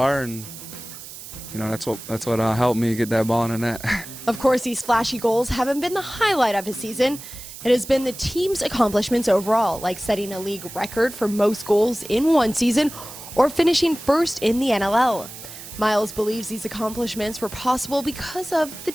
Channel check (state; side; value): noise; right; hiss, 13 dB below the sound